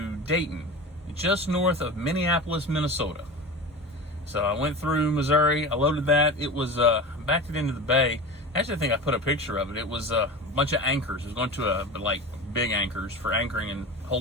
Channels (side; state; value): both; normal; correlation 0.30